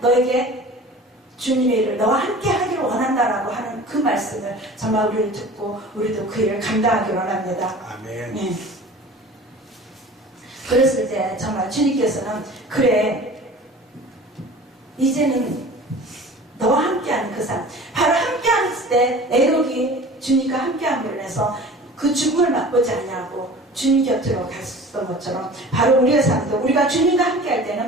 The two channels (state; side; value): normal; both; correlation 0.42